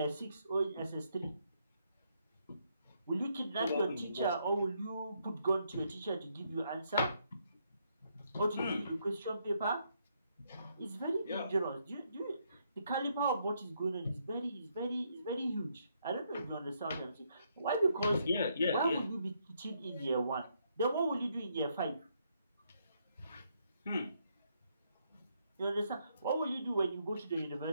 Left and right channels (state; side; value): inverted; both; correlation -0.74